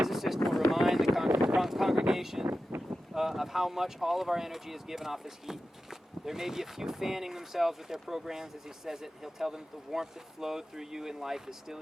will remind the congregation of how much all of our energy is given off as heat. There may be a few fanning themselves with their programs as he says it. He'll tell them that the warmth that flowed through you in life is still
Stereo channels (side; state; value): both; normal; correlation 0.93